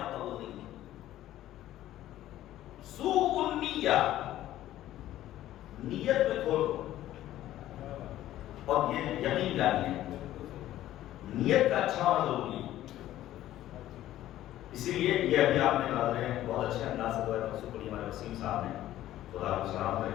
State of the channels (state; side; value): quieter; right; 13.7 dB